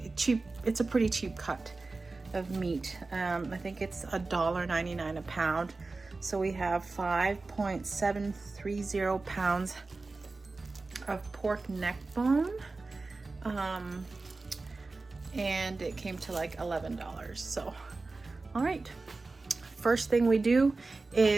a pretty cheap cut of meat. I think it's $1.99 a pound. So we have 5.730 pounds of pork neck bone. And it came to like $11. So, all right. First thing we do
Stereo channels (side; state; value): left; quieter; 3.6 dB